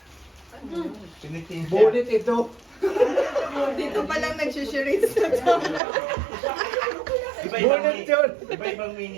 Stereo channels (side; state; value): left; drops out; at 5.8 s